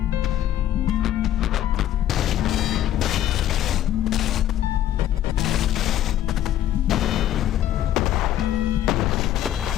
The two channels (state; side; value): quieter; right; 12.1 dB